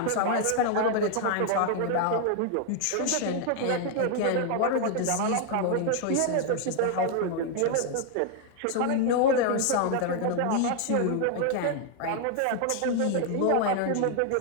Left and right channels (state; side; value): different; both; correlation 0.00